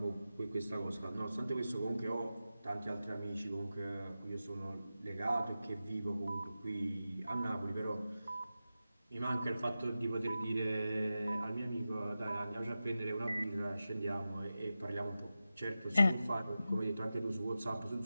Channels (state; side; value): inverted; both; correlation -0.93